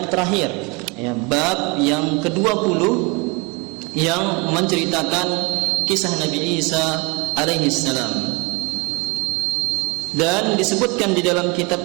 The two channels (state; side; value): quieter; left; 28.5 dB